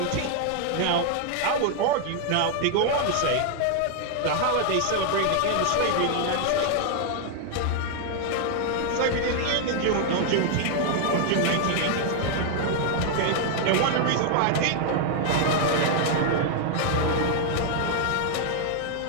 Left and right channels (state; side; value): different; both; correlation 0.00